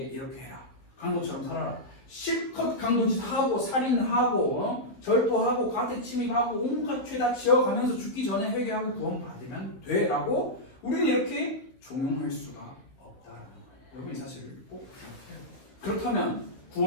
이렇게 해라, 강도처럼 살아라, 실컷 강도짓 하고 살인하고 절도하고 가택 침입하고 온갖 죄다 지어가면서 죽기 전에 회개하고 구원받으면 돼라고 우리는 이렇게 종용할 수가 없다라는 거예요. 여러분 이 사실을 꼭 기억해요. 그렇다면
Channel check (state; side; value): late; right; 16 ms